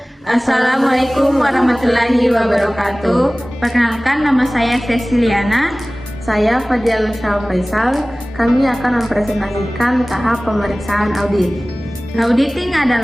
Assalamualaikum warahmatullahi wabarakatuh. Perkenalkan, nama saya Ceciliana. Saya Fadiyal Faisal. Kami akan mempresentasikan tahap pemeriksaan audit. Auditing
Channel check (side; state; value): both; normal; correlation 0.98